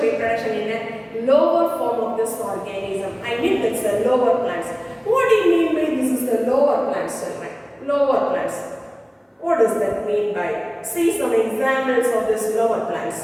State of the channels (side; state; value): both; identical; correlation 1.00